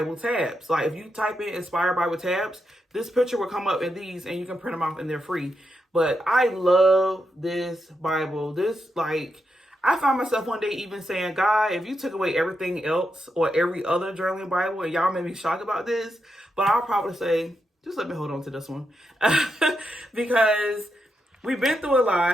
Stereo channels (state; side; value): normal; both; correlation 0.84